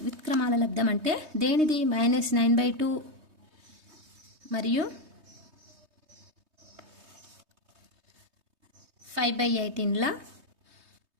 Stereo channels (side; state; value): left; late; 3.2 ms